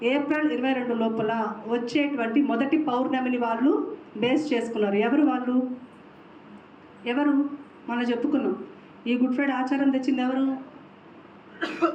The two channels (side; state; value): both; identical; correlation 1.00